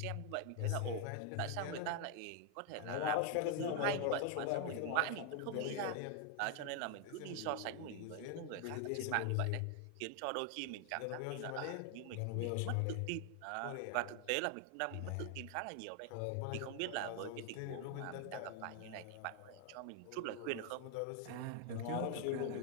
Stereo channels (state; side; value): different; both; correlation 0.00